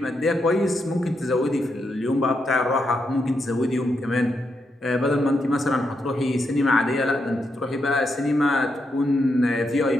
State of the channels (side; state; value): both; normal; correlation 0.82